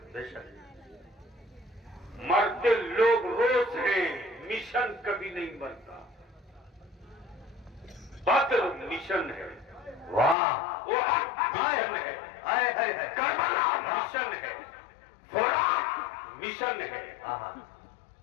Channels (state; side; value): drops out; right; at 10.4 s